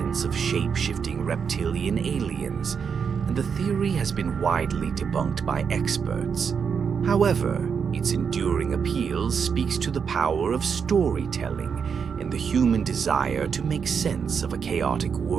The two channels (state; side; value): quieter; left; 6.5 dB